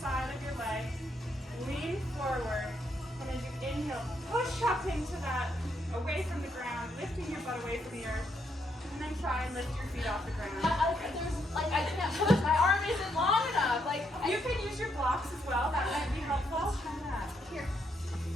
of your leg, lean forward, and as you inhale, push up into that, away from the ground, lifting your butt away from the earth, and then try and lift your feet off the ground. I can't push. My arm isn't long enough. You can use your blocks as well. That might be helpful. Here.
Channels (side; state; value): both; normal; correlation 0.77